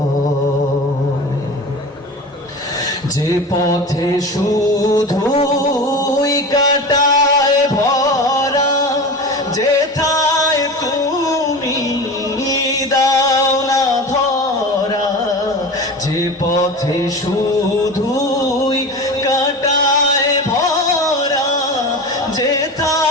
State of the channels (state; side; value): normal; both; correlation 0.31